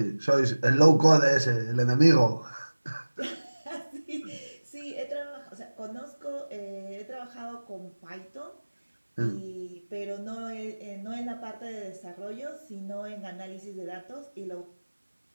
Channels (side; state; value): both; inverted; correlation -1.00